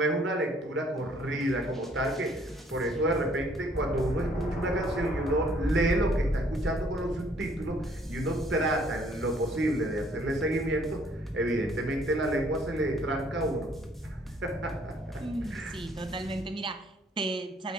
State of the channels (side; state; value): both; normal; correlation 0.62